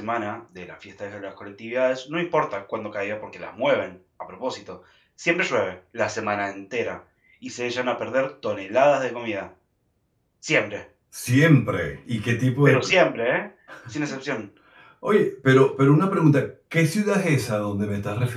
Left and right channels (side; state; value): both; identical; correlation 1.00